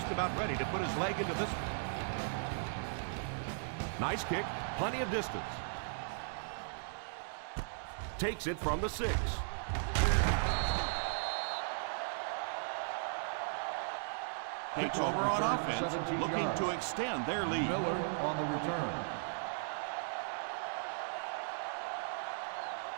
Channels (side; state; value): left; silent; digital silence